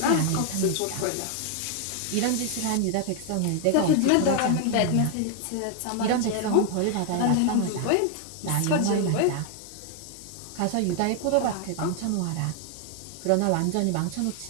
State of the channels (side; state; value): both; different; correlation 0.00